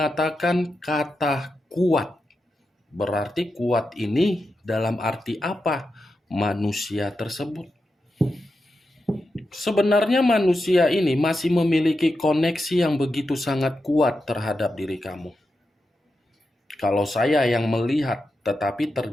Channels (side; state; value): both; normal; correlation 0.88